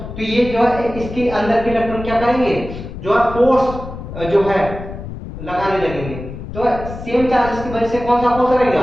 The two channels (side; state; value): left; noise; rumble, 10 dB below the sound